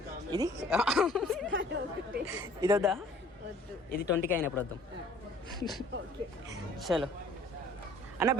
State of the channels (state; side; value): normal; both; correlation 0.53